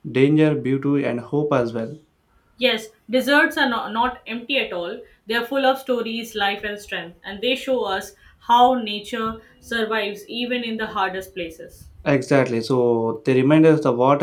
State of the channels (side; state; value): both; identical; correlation 1.00